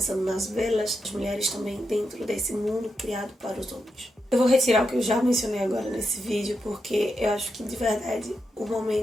nas velas, as mulheres também dentro desse mundo criado para os homens. Eu vou retirar o que eu já mencionei agora nesse vídeo, porque eu acho que de verdade o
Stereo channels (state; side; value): normal; both; correlation 0.85